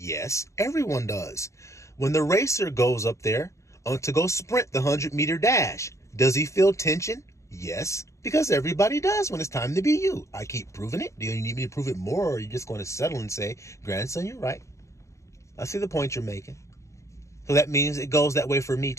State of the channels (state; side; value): late; right; 0.14 ms